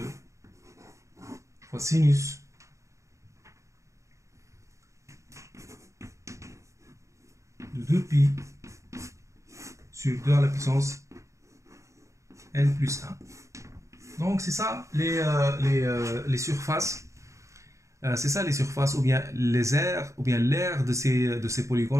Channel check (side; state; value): left; late; 0.15 ms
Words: fois sinus de 2π sur 2 à la puissance n plus 1. Donc c'est ça les surfaces. C'est ça les surfaces ou bien les aires ou bien l'aire de ces